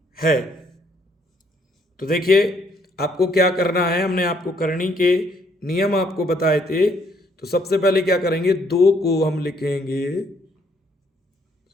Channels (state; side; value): normal; both; correlation 0.68